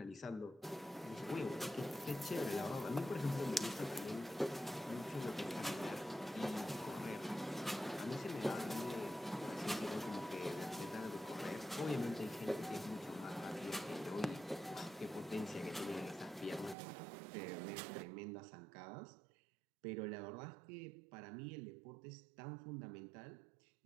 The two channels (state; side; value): drops out; left; at 16.8 s